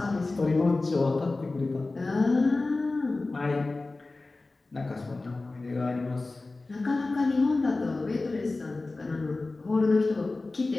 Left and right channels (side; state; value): right; quieter; 3.3 dB